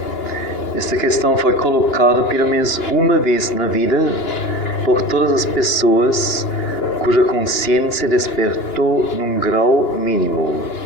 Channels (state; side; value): late; right; 2.9 ms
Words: esta questão foi colocada pelo menos uma vez na vida por todas as pessoas cuja consciência despertou num grau mínimo.